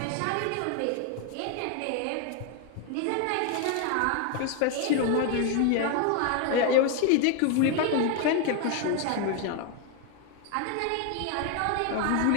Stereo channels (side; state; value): both; different; correlation 0.01